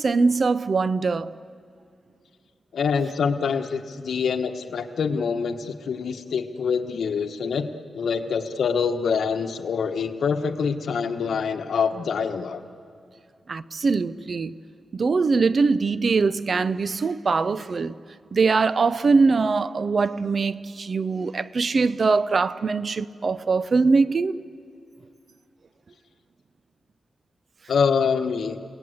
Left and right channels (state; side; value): normal; both; correlation 0.85